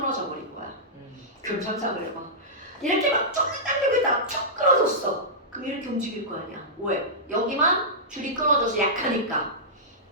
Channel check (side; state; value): both; normal; correlation -0.14